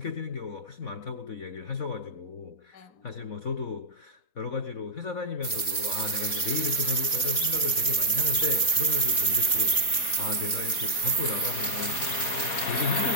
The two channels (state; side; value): late; right; 4.1 ms